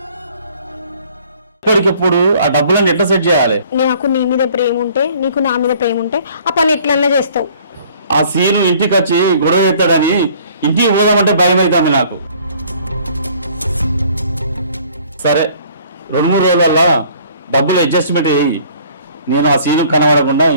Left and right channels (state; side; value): inverted; both; correlation -0.55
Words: ఇప్పటికిప్పుడు ఆ డబ్బులను ఎట్లా సెట్ చేయాలి? నాకు నీ మీద ప్రేమ ఉంటే, నీకు నా మీద ప్రేమ ఉంటే ఆ పని ఎట్లన్నా చేస్తావు. ఆ సీను ఇంటికి వచ్చి గొడవ ఎత్తాడని ఇంటికి పోదామంటే భయం అవుతుంది నాకు. సరే 2-3 రోజుల డబ్బులు అడ్జస్ట్మెంట్ అయ్యి నేను ఆ సీను కనబడకుండా